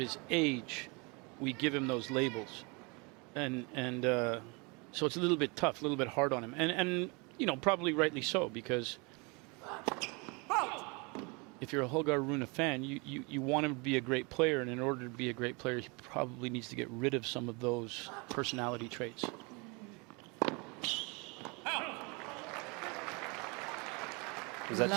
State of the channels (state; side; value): quieter; left; 29.7 dB